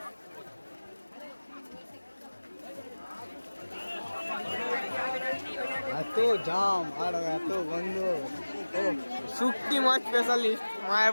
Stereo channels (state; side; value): inverted; both; correlation -1.00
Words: এত জাম আর এত গন্ধ শুটকি মাছ স্পেশালিস্ট